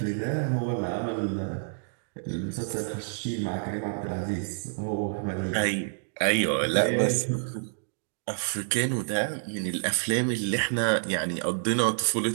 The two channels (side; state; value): left; silent; digital silence